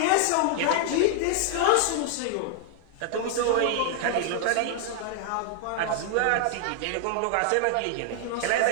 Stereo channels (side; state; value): both; different; correlation 0.00